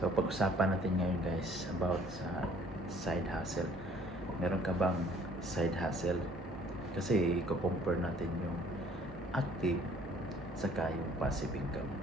pag-usapan natin ngayon guys about sa side hustle. Meron ka bang side hustle? Kasi, i-compare natin yung active saka yung passive income.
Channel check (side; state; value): both; normal; correlation 0.56